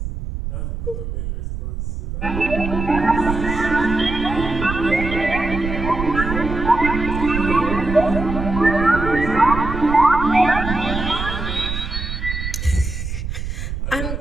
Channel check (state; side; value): noise; right; rumble, 5 dB below the sound